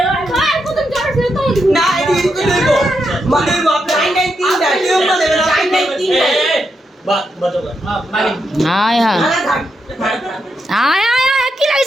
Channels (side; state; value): both; normal; correlation 0.83